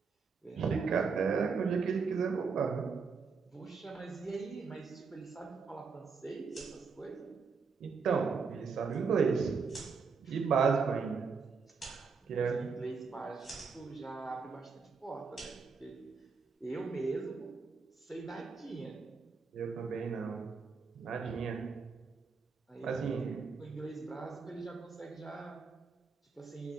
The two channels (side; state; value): left; quieter; 5.2 dB